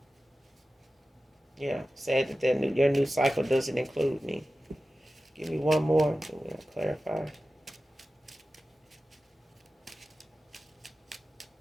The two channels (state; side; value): normal; both; correlation 0.94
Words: Yeah, sad that your new cycle doesn't include me. Give me one more. We'll clarify.